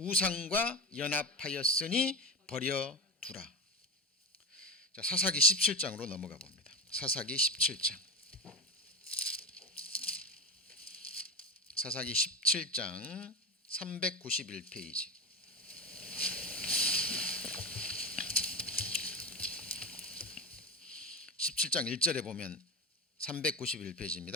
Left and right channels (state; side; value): normal; both; correlation 0.20